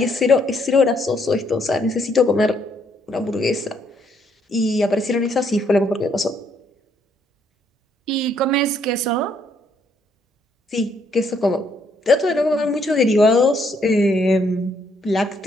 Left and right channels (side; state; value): both; normal; correlation 0.70